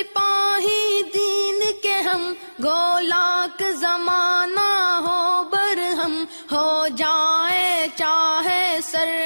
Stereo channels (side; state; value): both; inverted; correlation -1.00